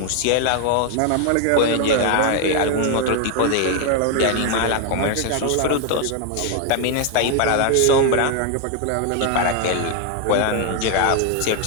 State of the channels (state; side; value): different; both; correlation 0.00